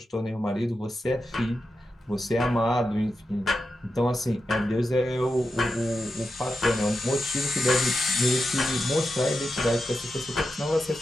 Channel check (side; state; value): both; normal; correlation 0.89